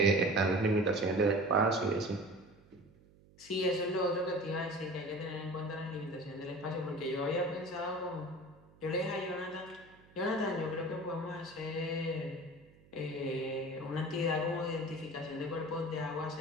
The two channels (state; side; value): noise; right; hum, 26 dB below the sound